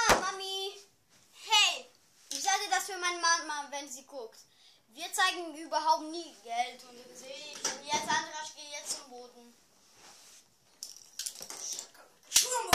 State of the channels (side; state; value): both; identical; correlation 1.00